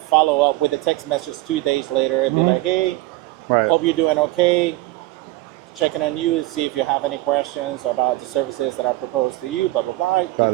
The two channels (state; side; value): quieter; left; 19.0 dB